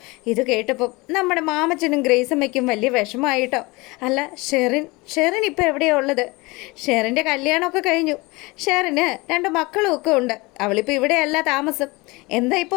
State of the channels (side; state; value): right; quieter; 24.2 dB